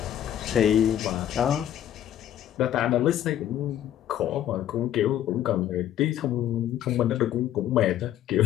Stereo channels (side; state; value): right; quieter; 11.3 dB